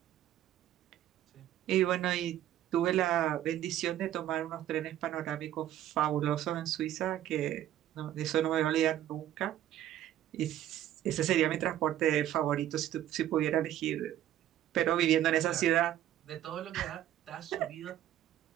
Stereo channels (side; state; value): left; quieter; 12.3 dB